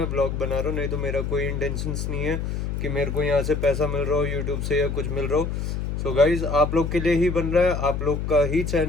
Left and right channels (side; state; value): left; noise; hum, 3 dB below the sound